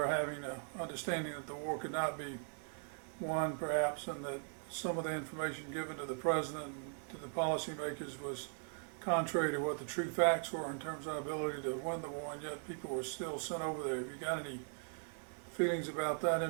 having an understanding that the war could not be won, perhaps, and that some of the information given to the president and to the policymakers was contrary to what the true facts were in terms of our ability to win the war, and yet people were still sent over there. Have you got any feelings about that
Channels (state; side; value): silent; left; 51 dB below the other